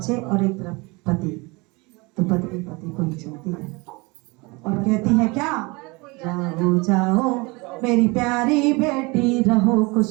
और एक तरफ पति, तो पत्नी पति को ही चलती है और कहती है क्या, जाओ जाओ मेरी प्यारी बेटी, रहो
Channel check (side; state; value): left; quieter; 26.2 dB